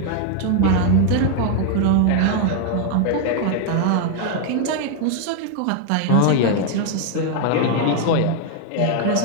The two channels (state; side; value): different; both; correlation 0.00